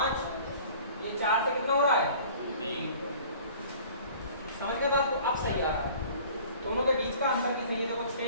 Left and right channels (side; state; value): both; inverted; correlation -0.47